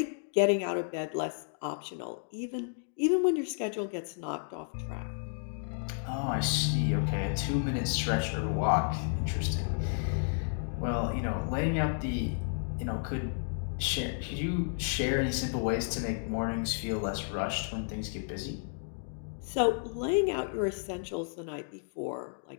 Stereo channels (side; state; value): right; silent; digital silence